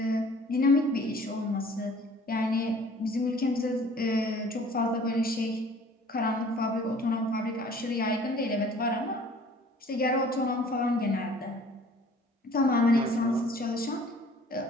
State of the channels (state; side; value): normal; both; correlation 0.51